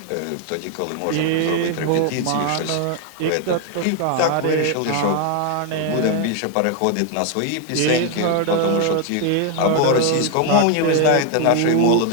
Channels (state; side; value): different; both; correlation 0.01